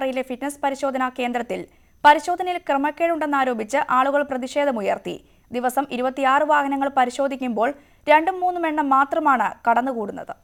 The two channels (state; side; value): identical; both; correlation 1.00